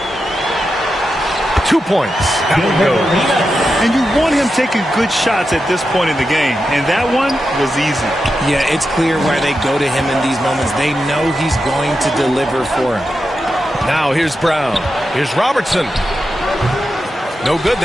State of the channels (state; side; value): normal; both; correlation 0.89